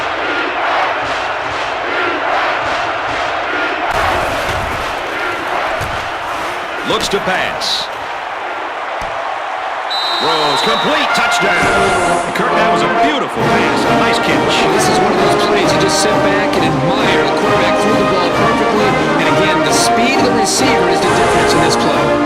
Looks to pass. Throws complete. Touchdown. Kurt, that was a beautiful pass. A nice catch. This is one of those plays you just sit back and admire. The quarterback threw the ball perfectly. And again, the speed of the receiver is the difference in this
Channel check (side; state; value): both; identical; correlation 1.00